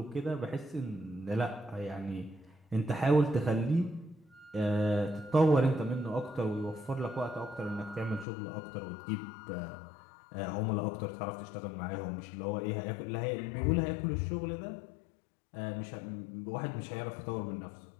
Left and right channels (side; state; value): right; drops out; at 8.2 s